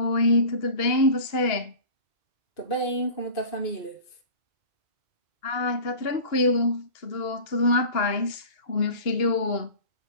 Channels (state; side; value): late; right; 2.8 ms